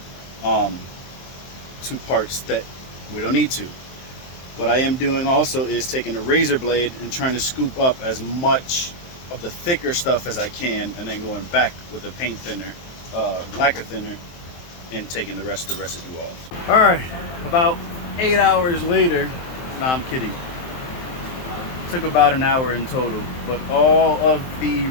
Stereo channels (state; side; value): late; right; 23 ms